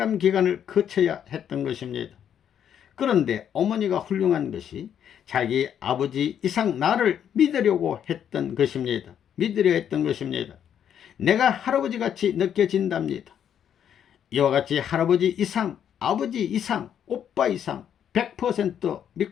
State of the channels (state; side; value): quieter; right; 9.1 dB